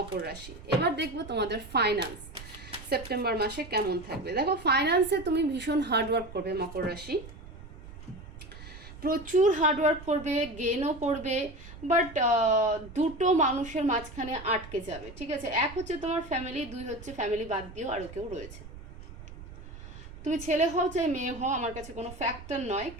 রাশি। এবার দেখবো তোমাদের ফাইন্যান্স সেপ্টেম্বর মাসে কেমন থাকবে। দেখো, ফাইন্যান্সে তুমি ভীষণ হার্ডওয়ার্ক করবে মকর রাশি, প্রচুর হার্ডওয়ার্ক করবে, গেনও করবে, বাট দুটো মানুষের মাঝখানে আটকে যাবে, ঠিক আছে? এক হচ্ছে তোমার ফ্যামিলি, দুই হচ্ছে ফ্যামিলি বাদ দিয়েও আরও কেউ রয়েছে। তুমি ছেলে হও চাই মেয়ে হও, আমার কাছে কোনো ফ্যাক্টর নয়,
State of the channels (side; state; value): right; noise; rumble, 15 dB below the sound